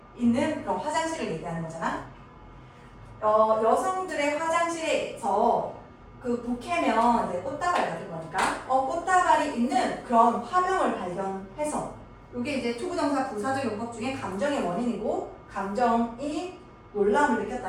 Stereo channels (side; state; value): both; identical; correlation 1.00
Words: 있는 그런 화장실을 얘기하는 거잖아. 여성들의 화장실에서 그 부케면 이제 꽃다발 같은 거니까 꽃다발이 있는 그런 화명을 발견해서 이게 이제 투부정사 부사적 용법 중에 감정의 원인이고 감정이 놀라움을